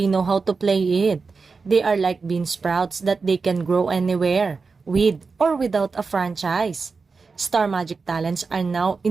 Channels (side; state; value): left; quieter; 4.6 dB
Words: know how to play it. They are like bean sprouts that they can grow anywhere, with or without a franchise. Star Magic talents are now